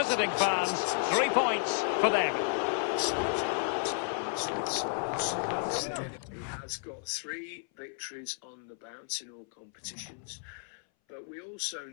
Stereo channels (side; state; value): right; silent; 56 dB below the other